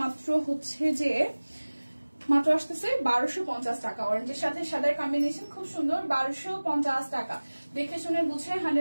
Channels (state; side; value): inverted; both; correlation -1.00